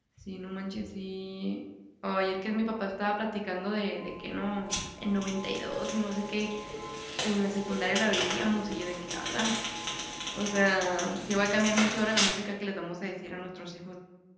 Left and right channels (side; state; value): both; identical; correlation 1.00